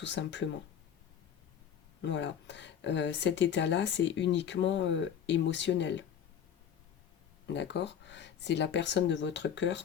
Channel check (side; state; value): right; quieter; 8.6 dB